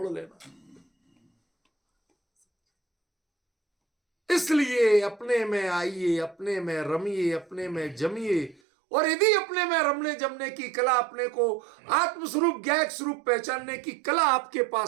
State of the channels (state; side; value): drops out; left; at 8.6 s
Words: लेना। इसलिए अपने में आइए, अपने में रमिए, अपने में जमिए। और यदि अपने में रमने जमने की कला, अपने को आत्मस्वरूप ज्ञायक स्वरूप पहचानने की कला आपके